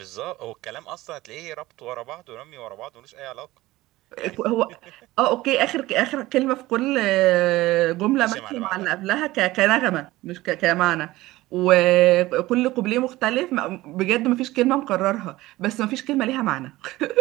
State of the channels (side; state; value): left; quieter; 18.1 dB